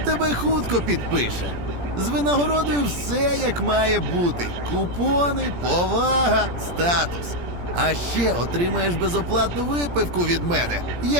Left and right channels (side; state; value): left; late; 17 ms